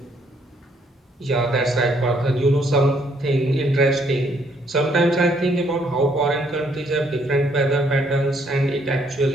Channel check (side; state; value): both; normal; correlation 0.68